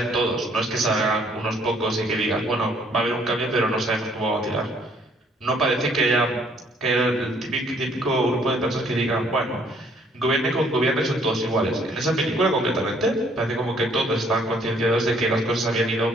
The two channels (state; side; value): normal; both; correlation 0.63